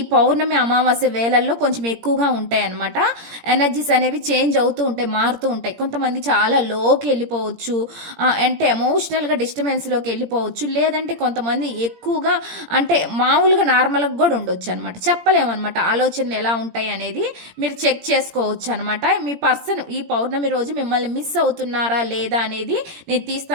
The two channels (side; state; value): left; late; 17 ms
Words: పౌర్ణమి అమావాస్య వేళల్లో కొంచెం ఎక్కువగా ఉంటాయి అనమాట. ఎనర్జీస్ అనేవి చేంజ్ అవుతూ ఉంటాయి, మారుతూ ఉంటాయి. కొంతమంది చాలా లోకి వెళ్ళిపోవచ్చు, అంటే ఎమోషనల్గా డిస్టర్బెన్స్లోకి వెళ్ళిపోవచ్చు. లేదంటే కొంతమంది ఎక్కువగా అంటే మామూలుగా నార్మల్గా కూడా ఉండొచ్చు అనమాట. చెప్పలేమన్నమాట ఆలోచనలు ఎలా ఉంటాయి అనేది మీరు చెక్ చేసుకోవచ్చు అనమాట. మీ పర్సన్ ఈ పౌర్ణమి రోజు మిమ్మల్ని మిస్ అవుతున్నారా లేదా అనేది నేను